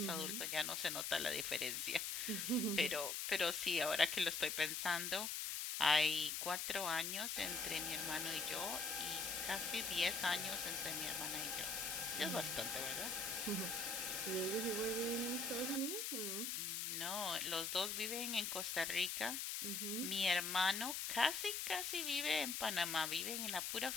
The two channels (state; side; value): noise; left; hiss, 1 dB below the sound